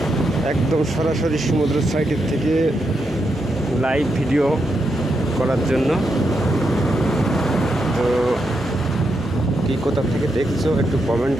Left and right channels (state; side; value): normal; both; correlation 0.83